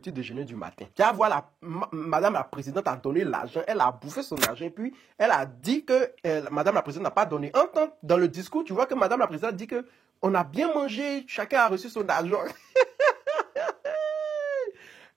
déjeuner du matin. Tu vas voir madame la présidente a donné l'argent, elle a bouffé son argent, puis elle a dit que madame la présidente n'a pas donné. Entends, dans le discours, tu vois que madame la présidente dit que on a bien mangé, chacun a reçu son argent.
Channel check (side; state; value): left; quieter; 6.8 dB